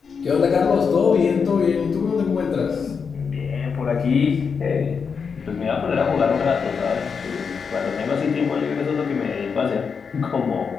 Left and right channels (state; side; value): quieter; right; 5.9 dB